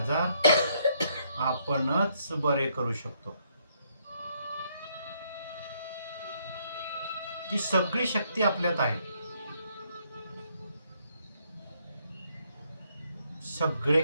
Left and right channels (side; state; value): both; inverted; correlation -0.71